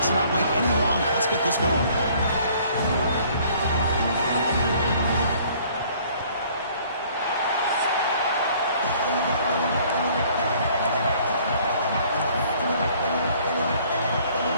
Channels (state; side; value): inverted; both; correlation -0.57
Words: not wait any longer. Let's get this going.